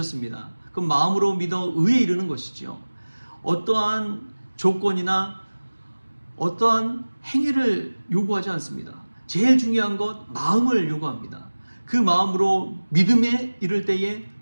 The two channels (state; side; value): inverted; both; correlation -1.00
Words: 그럼 마음으로 믿어 의에 이르는 것이죠. 어떠한 조건이나 어떠한 행위를 요구하지 않습니다. 제일 중요한 것, 마음을 요구합니다. 그 마음으로 믿음에 이를 때에